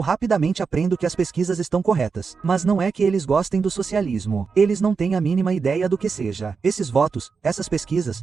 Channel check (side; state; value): left; quieter; 5.2 dB